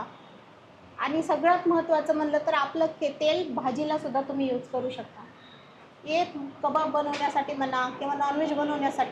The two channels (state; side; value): identical; both; correlation 1.00